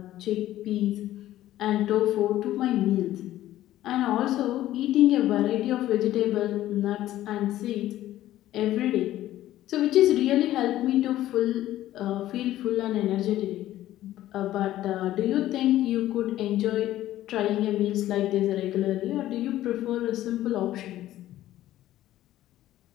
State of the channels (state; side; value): quieter; right; 14.0 dB